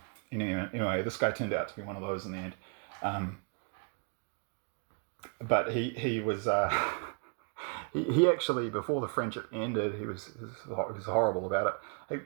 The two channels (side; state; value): left; quieter; 38.0 dB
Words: Anyway, this guy turned out to be one of those in the end. But he was he actually, before the friendship ended, he was horrible about it.